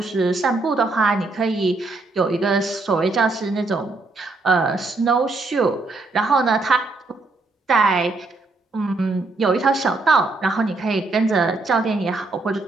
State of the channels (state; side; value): quieter; left; 3.4 dB